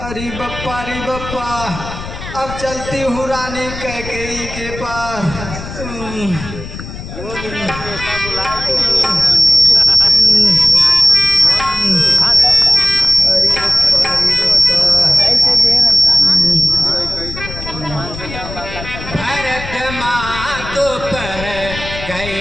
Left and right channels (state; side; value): noise; left; rumble, 11 dB below the sound